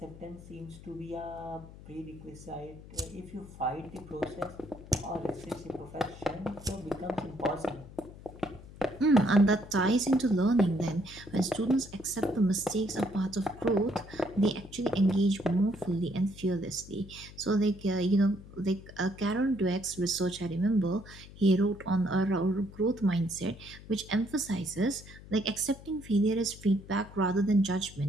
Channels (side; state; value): left; noise; hum, 17 dB below the sound